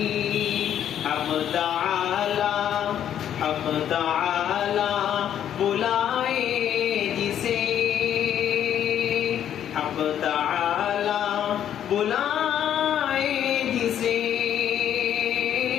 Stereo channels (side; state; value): right; quieter; 10.1 dB